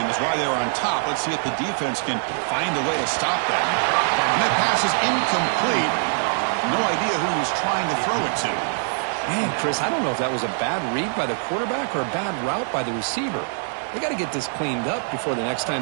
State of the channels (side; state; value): left; silent; 61 dB below the other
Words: is why they were on top. Let's see if the defense can find a way to stop that. And that pass is incomplete. No idea who he was trying to throw it to. Man, Chris, I don't know if that was a bad read by the quarterback or a bad route by the receiver. They got to get this cleaned up before the next